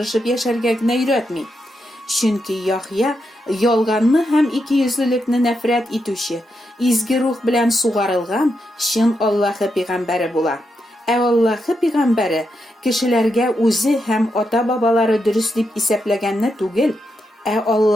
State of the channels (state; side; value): normal; both; correlation 0.84